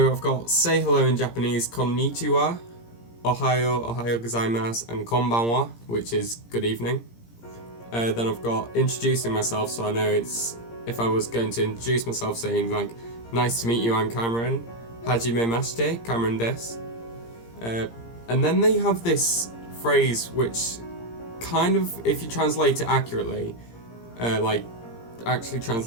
I've got say hello in Japanese, konnichiwa, ohayo gozaimasu, and konbanwa, which is good evening. Then I've got introducing myself, so I know if I was going to introduce myself saying nice to meet you, I'm Cameron, hajimemashite, Cameron desu. And then they have this phrase which kind of, if you translate it accurately, actually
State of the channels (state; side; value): late; right; 17 ms